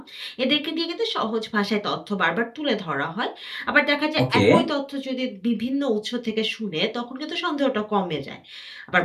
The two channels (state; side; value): identical; both; correlation 1.00